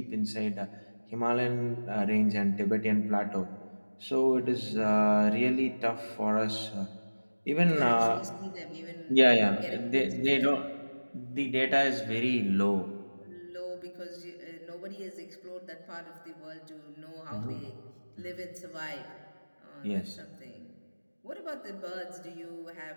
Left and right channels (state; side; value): inverted; both; correlation -1.00